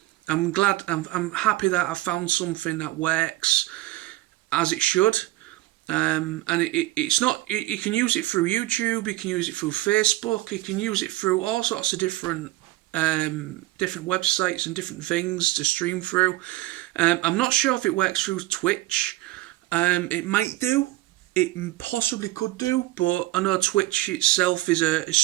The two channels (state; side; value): quieter; left; 17.7 dB